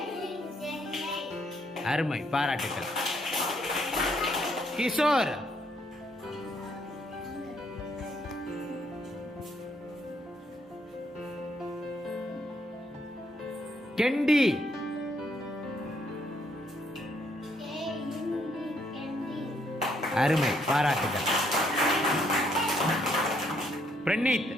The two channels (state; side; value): normal; both; correlation 0.71